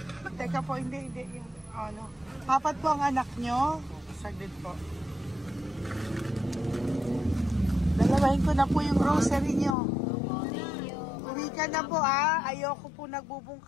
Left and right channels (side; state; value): right; drops out; at 9.8 s